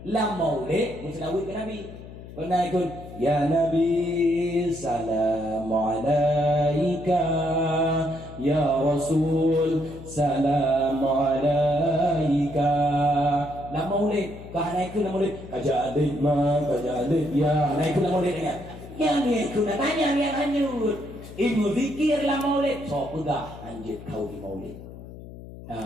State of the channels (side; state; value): left; noise; hum, 15 dB below the sound